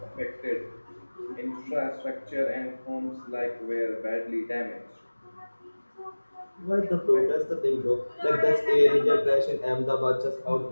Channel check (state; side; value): inverted; both; correlation -1.00